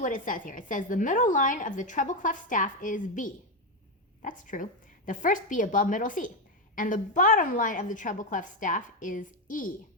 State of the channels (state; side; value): normal; both; correlation 0.08